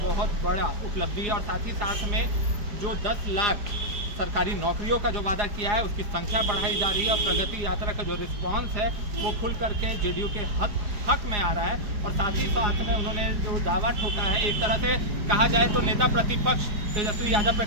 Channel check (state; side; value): late; left; 4.9 ms